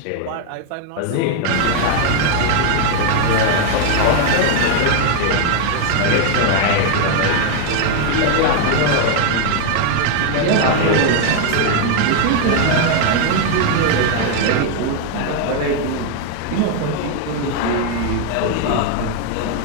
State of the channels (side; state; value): both; different; correlation 0.01